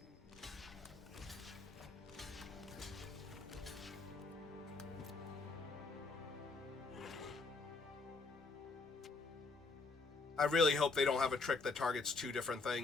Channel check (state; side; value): quieter; right; 3.9 dB